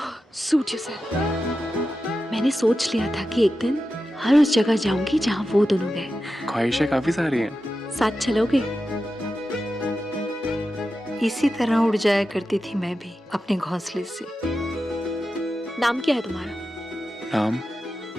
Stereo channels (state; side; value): normal; both; correlation 0.91